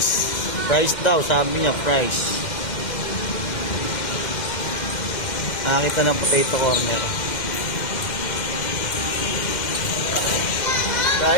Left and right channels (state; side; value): late; right; 2.1 ms